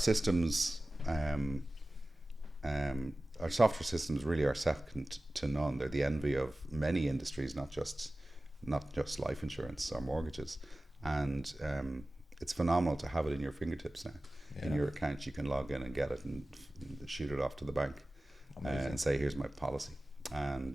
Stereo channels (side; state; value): both; normal; correlation 0.97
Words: our software systems really are second to none. They're the envy of many industries, not just life insurance or mortgages. And it's phenomenal to have it in your fingertips now. Yeah. In your account, you can log in and get it and shoot it off to the bank and say, "Here's my policy."